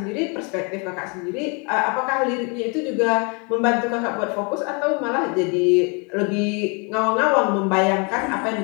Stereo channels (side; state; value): right; quieter; 33.1 dB